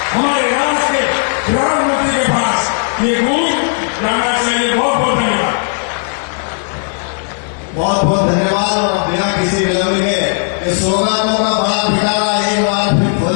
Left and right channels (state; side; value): silent; right; digital silence